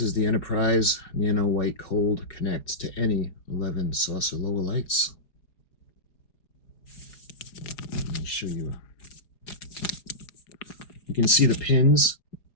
is the Enterprise Nano White Cold, connects to any 11 saucer lower lights. Let me show you. You can see the pins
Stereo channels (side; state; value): right; late; 4.9 ms